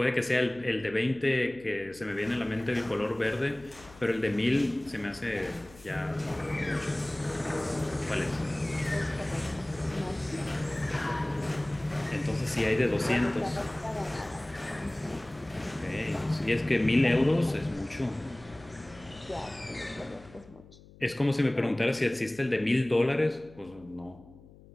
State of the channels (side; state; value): left; noise; hum, 22 dB below the sound